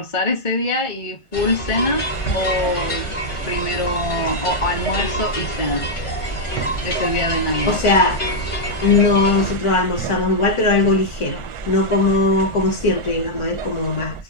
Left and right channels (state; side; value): late; right; 1.5 ms